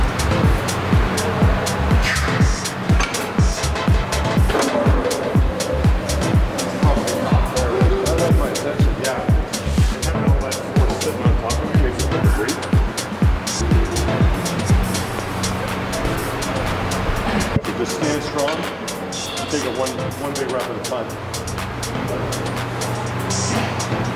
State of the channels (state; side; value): identical; both; correlation 1.00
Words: Just stand strong. Take it one big rep at a time.